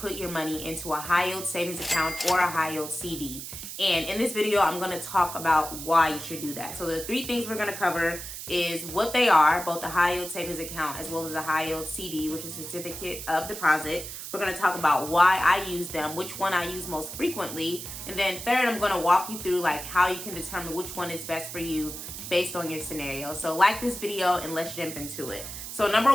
your money into a high yield savings account or a high yield CD. And in this video, I'm going to talk about why you should do that. So the three things we're going to cover is what they are, both a high yield savings account as well as a high yield CD, which is certificate of deposit. We're going to talk about why I use them, which one I use most frequently. And then third, I'm going to walk you through like how you can determine which one is best for you based on your scenario. So like this video and let's jump into it. So number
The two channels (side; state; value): right; noise; hiss, 9 dB below the sound